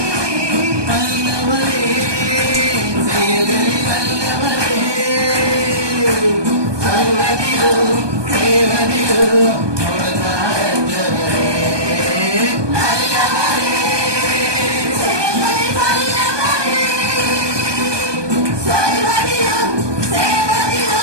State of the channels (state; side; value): late; left; 1.2 ms